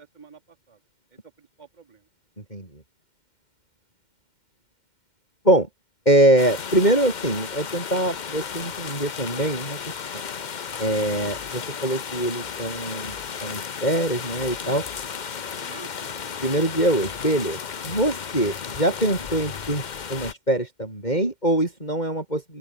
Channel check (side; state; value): right; late; 2.1 ms